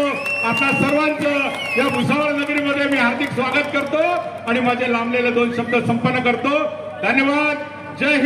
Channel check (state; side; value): identical; both; correlation 1.00